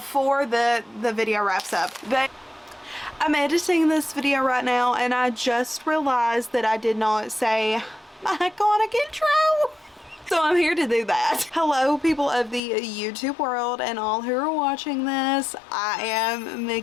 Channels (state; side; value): drops out; right; at 12.6 s